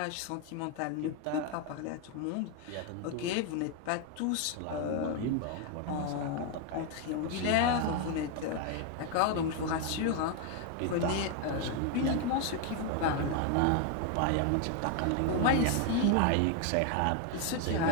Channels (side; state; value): both; different; correlation 0.01